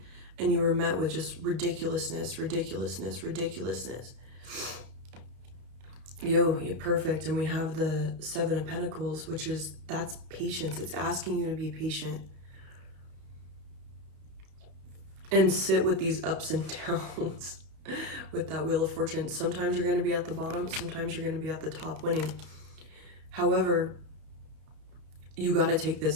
And you were met with just ridiculousness. You're perfect. And we have the 7 of Pentacles, that's patience. It's asking you to be patient. And sit with these ups and downs. With that Wheel of Fortune. Sometimes you're going to be at the bottom, sometimes you're going to be at the top winning. However, you got to take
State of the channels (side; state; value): left; late; 32 ms